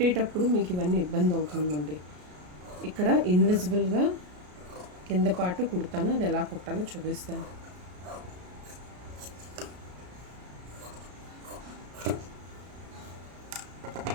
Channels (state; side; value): late; left; 33 ms